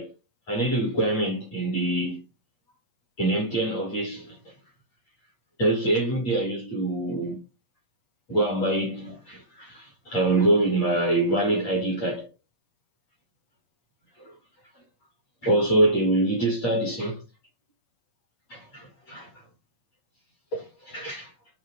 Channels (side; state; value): right; late; 8.3 ms